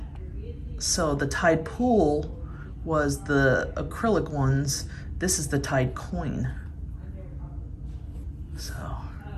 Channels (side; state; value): both; identical; correlation 1.00